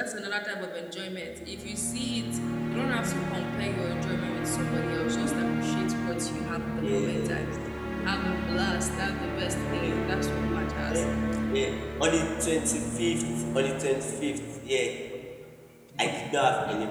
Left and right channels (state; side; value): identical; both; correlation 1.00